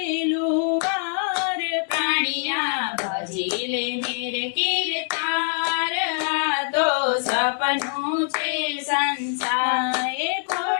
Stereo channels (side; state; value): right; silent; 63 dB below the other